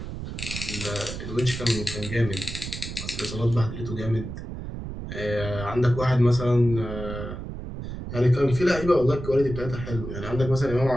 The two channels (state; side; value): noise; right; rumble, 8 dB below the sound